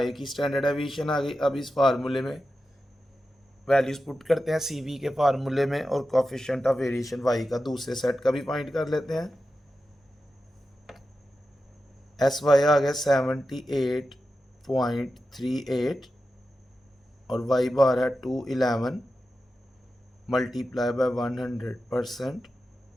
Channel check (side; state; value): both; normal; correlation 0.91